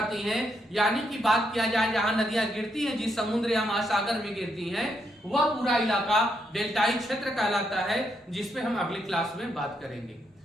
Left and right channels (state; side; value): normal; both; correlation 0.78